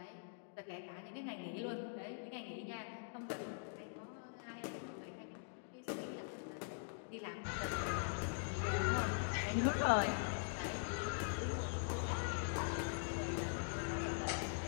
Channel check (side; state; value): right; silent; digital silence